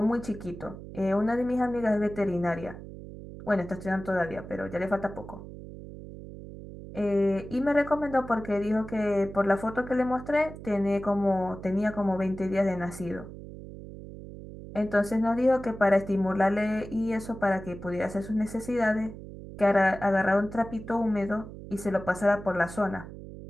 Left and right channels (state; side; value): noise; right; hum, 13 dB below the sound